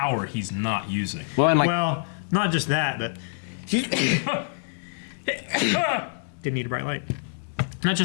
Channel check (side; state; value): right; silent; digital silence